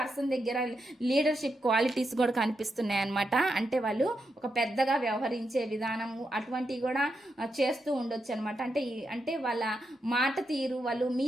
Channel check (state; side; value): normal; both; correlation 0.84